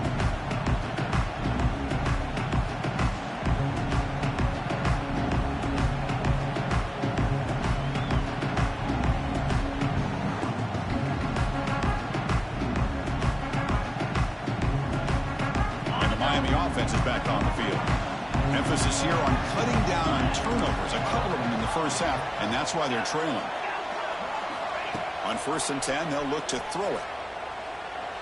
Offense is back on the field. Emphasis here on cutting down on turnovers, a couple of them in the first half, and that's why they're trailing. On 1st and 10, they'll look to throw it.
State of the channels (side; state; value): both; identical; correlation 1.00